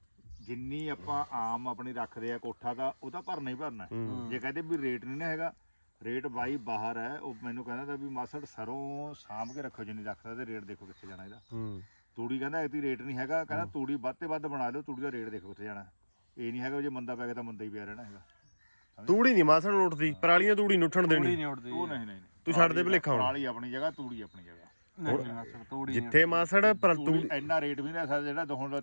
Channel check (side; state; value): both; inverted; correlation -1.00